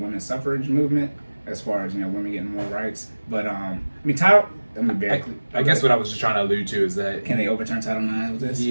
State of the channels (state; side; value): inverted; both; correlation -1.00